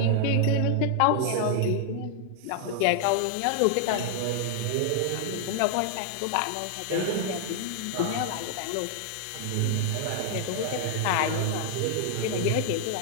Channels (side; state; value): both; different; correlation 0.00